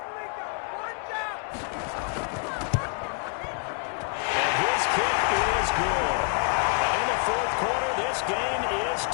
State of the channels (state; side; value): quieter; right; 38.7 dB